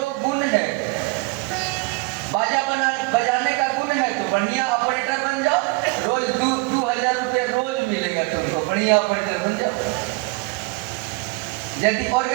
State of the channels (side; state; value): left; quieter; 27.4 dB